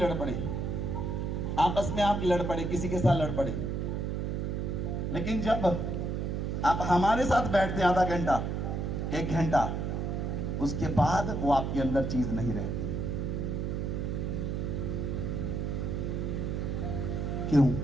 पड़े, आपस में आप लड़ पड़े, किसी के साथ लड़ पड़े, लेकिन जब आप हमारे साथ बैठते हैं आधा घंटा, एक घंटा, उसके बाद वो आपके अंदर चीज नहीं रहती। क्यों?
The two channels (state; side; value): noise; right; hum, 1 dB below the sound